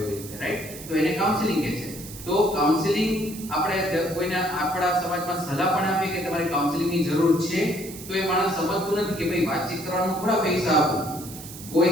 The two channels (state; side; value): noise; right; hiss, 14 dB below the sound